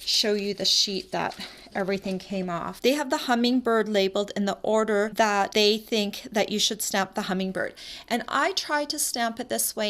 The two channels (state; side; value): identical; both; correlation 1.00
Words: you the sheet that everything came off. They have the hummingbird labeled in the order that they think that you should stamp the hummingbird. And I tried to stamp it this